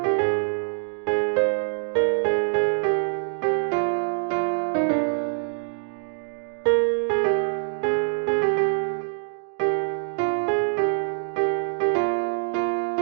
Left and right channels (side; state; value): left; silent; digital silence